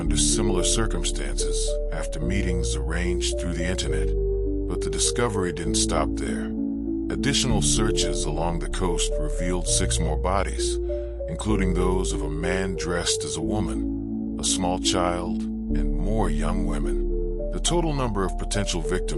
similar circumstances after meetings arranged through the internet. But the discovery didn't stop there. Additional searches along the coast revealed 6 more bodies, including those of a man dressed as a woman, a small child, and more young women. The total number of potential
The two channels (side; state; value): both; identical; correlation 1.00